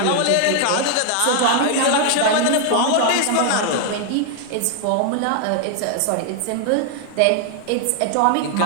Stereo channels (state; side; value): different; both; correlation 0.00